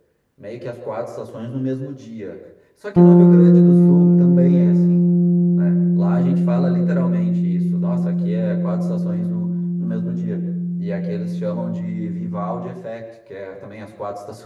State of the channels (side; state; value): both; identical; correlation 1.00